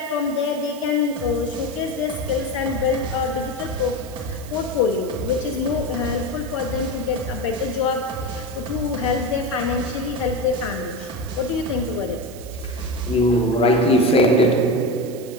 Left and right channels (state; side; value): noise; right; hiss, 18 dB below the sound